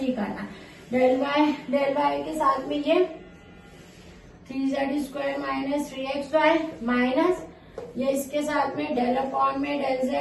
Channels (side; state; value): both; identical; correlation 1.00